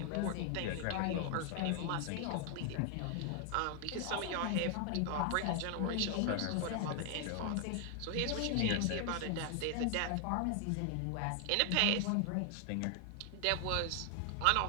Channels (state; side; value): different; both; correlation 0.00